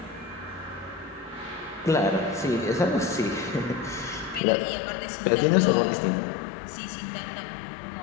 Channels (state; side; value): drops out; right; at 4.4 s